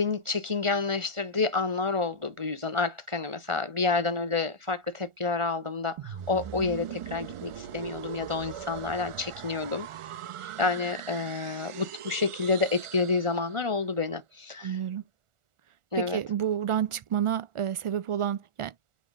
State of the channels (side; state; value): left; late; 1.4 ms